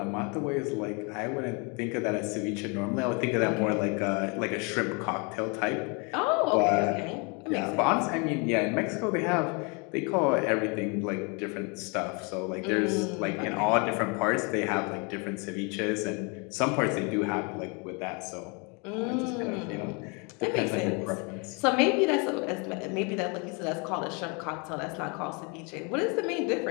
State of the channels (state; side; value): quieter; right; 32.6 dB